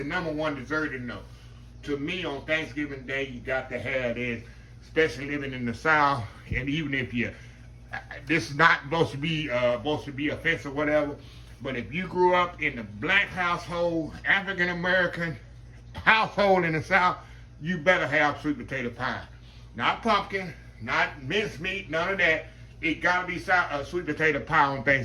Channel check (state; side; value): identical; both; correlation 1.00